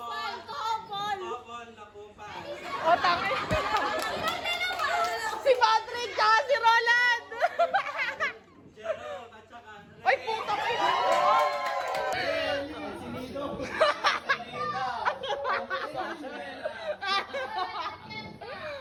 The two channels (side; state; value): both; identical; correlation 1.00